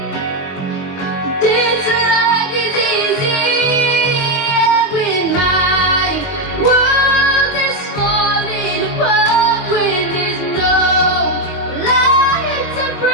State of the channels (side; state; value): right; late; 21 ms